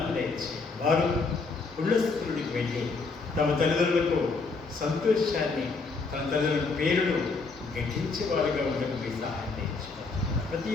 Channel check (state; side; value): quieter; right; 4.2 dB